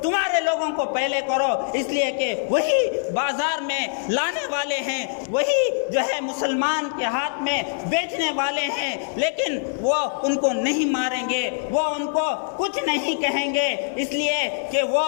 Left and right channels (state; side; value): silent; right; 63 dB below the other